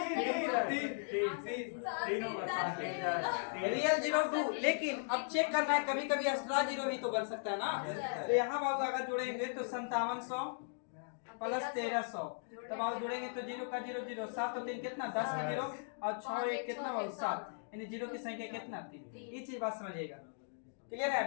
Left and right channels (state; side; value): silent; right; digital silence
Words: रियल जीरो 2, लेकिन अब चेक करना है कभी कभी एक्स्ट्रा जीरो भी तो बन सकता है ना। तो यहाँ बाबू अगर जोड़ेंगे तो 5700 प्लस 1300, तब बाबू जोड़ेंगे तो जीरो का जीरो जीरो, 7 और 3 कितना, 10 का जीरो, और 6 1 कितना बाबू 7, यानी जीरो की संख्या कितना, 3। ये चीज बात समझिएगा, क्लियर है।